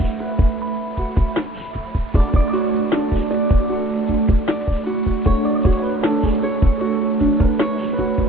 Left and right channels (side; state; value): both; normal; correlation 0.58